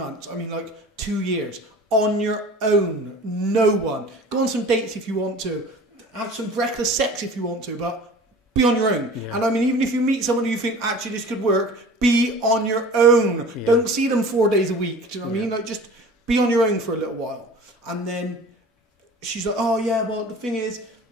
I mean like 2 years on your own. No one. Go on some dates if you want to. Have some reckless sex if you want to, but be on your own. Yeah. And I mean, even if you meet someone who you think actually this could work, be on your own. Yeah. Don't see them 4 days a week. Do you know what I mean? Like just be on your own for a little while. And then she's like, oh yeah, well the thing is,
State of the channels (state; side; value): normal; both; correlation 0.42